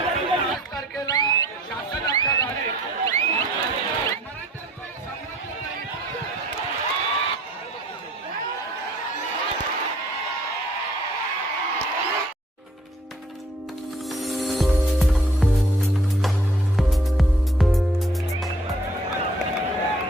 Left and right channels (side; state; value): both; normal; correlation 0.61